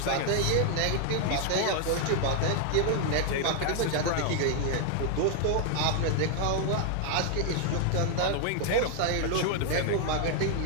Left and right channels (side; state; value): both; different; correlation 0.00